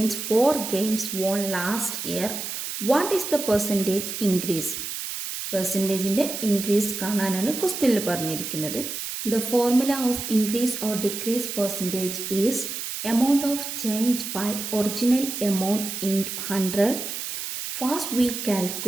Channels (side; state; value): right; noise; hiss, 6 dB below the sound